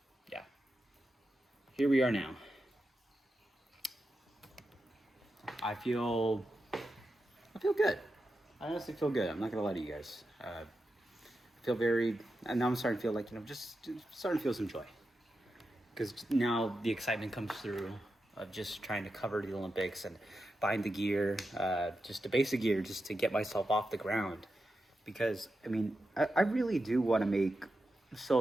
yeah, here we are now. I feel good. I honestly feel good. I'm not gonna lie to you guys. Feel very, and now I'm starting to feel like, you know, just starting to feel some joy, because now the excitement comes through of just trying to cover the Olympics and buying the gear, just the basic gear, just to get myself off the ground. Because I mean, I really do want to make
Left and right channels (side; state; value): both; normal; correlation 0.89